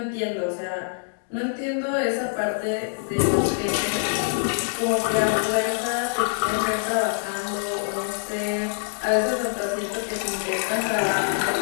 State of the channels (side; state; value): right; silent; digital silence